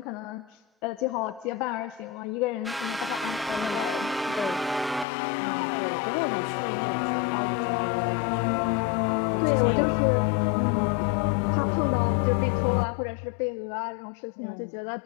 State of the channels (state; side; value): drops out; right; at 5.1 s